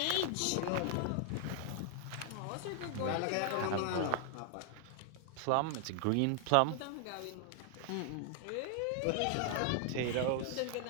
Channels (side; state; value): both; different; correlation 0.00